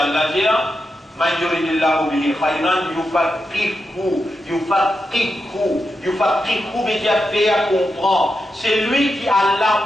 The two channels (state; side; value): normal; both; correlation 0.88